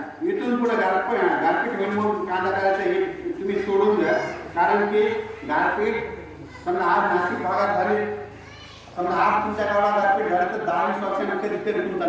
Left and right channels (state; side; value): identical; both; correlation 1.00